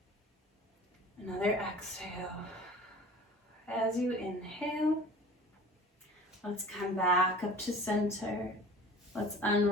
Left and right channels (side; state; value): both; normal; correlation 0.43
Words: another exhale. As you inhale, let's come back up to center. Let's